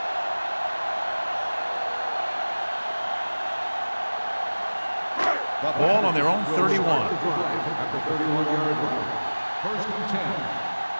Ball on their own 31. At the 31-yard line. First and 10.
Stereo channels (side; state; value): both; inverted; correlation -1.00